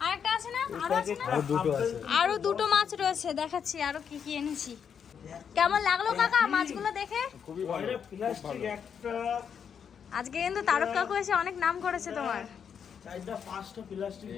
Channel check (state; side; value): quieter; right; 7.4 dB